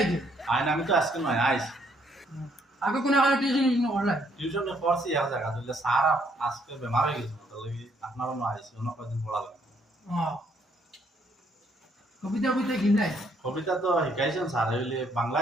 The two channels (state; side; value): normal; both; correlation 0.69